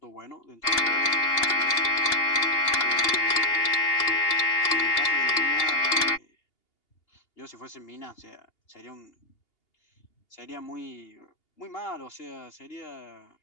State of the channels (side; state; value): right; late; 2.8 ms